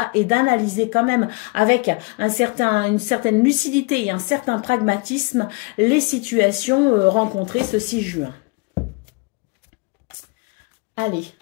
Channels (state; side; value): quieter; right; 29.7 dB